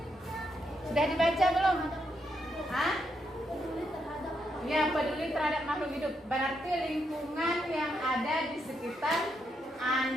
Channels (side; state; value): both; normal; correlation 0.79